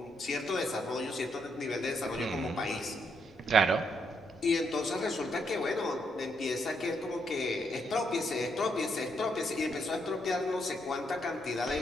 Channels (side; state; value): both; normal; correlation 0.76